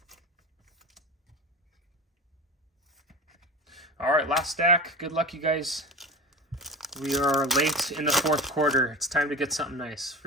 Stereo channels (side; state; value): both; normal; correlation 0.29